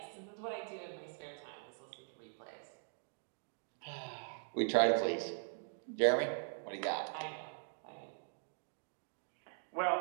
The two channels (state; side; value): silent; left; digital silence